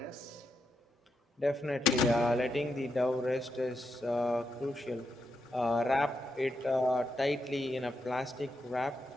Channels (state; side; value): normal; both; correlation 0.83